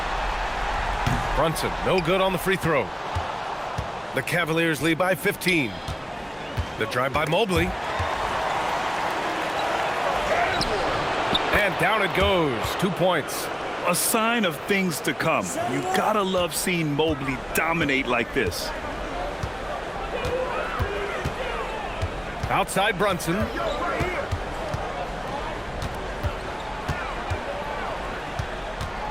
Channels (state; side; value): identical; both; correlation 1.00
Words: Brunson, no good on the free throw. The Cavaliers lead by 15. The drive by Mobley. And down it goes. 2 points. A sign of things to come. You gotta love seeing Mobley dominate like this. Outside Brunson.